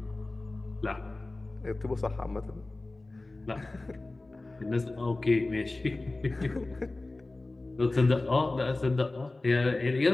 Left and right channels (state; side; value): quieter; right; 3.0 dB